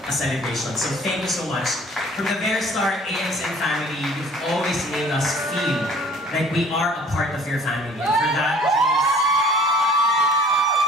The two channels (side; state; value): both; normal; correlation 0.52